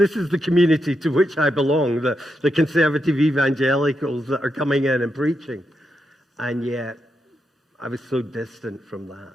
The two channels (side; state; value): both; normal; correlation 0.84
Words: is the community to which I belong, the conservative evangelicals that are coming in and preaching. And yet, I was so distant from that